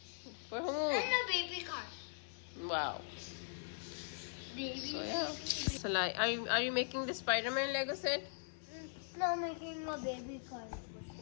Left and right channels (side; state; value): right; silent; 51 dB below the other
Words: For whom? and a baby car. Wow. Baby. So yeah. Salaar, are you making the Spider-Man Lego set? No, making a baby car.